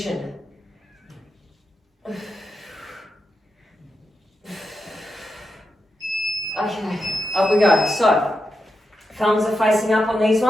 Okay, up we go. So, thumbs are facing up on these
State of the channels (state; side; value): normal; both; correlation 0.86